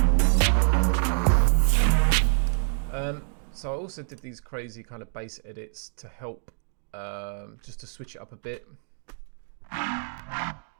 So I also did these crazy kind of bass edits to help, just to switch it up a bit. That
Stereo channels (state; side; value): silent; left; digital silence